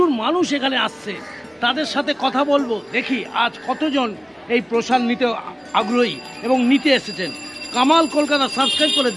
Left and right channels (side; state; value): both; identical; correlation 1.00